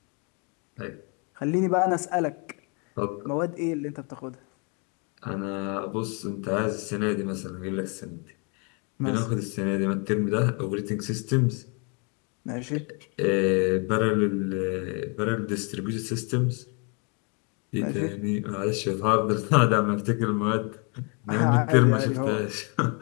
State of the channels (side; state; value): right; quieter; 34.8 dB